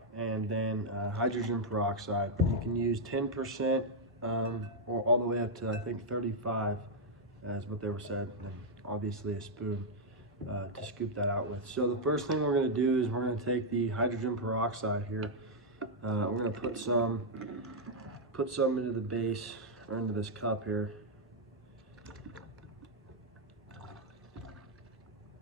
and then hydrogen peroxide. You can use 10% or all the way up to I think 35 is what they were said, and obviously a spoon to scoop that out with. So the first thing we're going to do is we're going to take the hydrogen peroxide here. We're going to put some into the base or into this cup here.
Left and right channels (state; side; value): normal; both; correlation -0.03